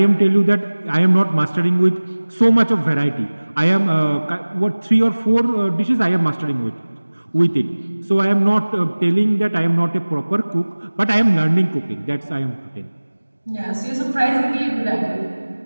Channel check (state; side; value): inverted; both; correlation -1.00